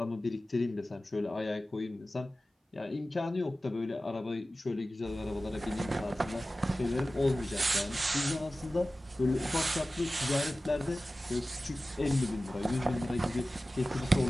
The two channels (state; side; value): normal; both; correlation 0.96